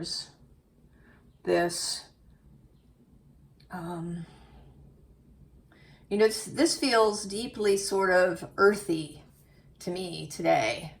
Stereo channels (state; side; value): identical; both; correlation 1.00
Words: this, you know, this feels deeply sort of earthy to me today,